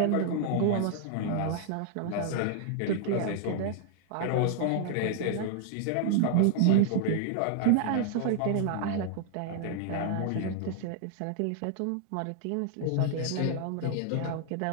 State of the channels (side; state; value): both; different; correlation -0.01